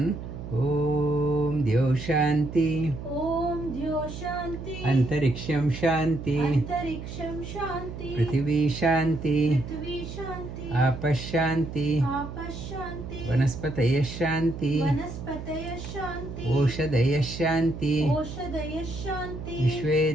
Om Dyo Shanti, Om Dyo Shanti, Antariksham Shanti, Antariksham Shanti, Prithvi Shanti, Prithvi Shanti, Apash Shanti, Apash Shanti, Vanaspataya Shanti, Vanaspataya Shanti, Oshadaya Shanti, Oshadaya Shanti,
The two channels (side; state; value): right; noise; hum, 9 dB below the sound